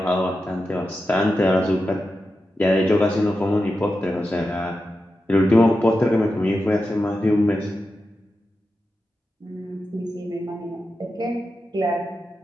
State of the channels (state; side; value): normal; both; correlation 0.90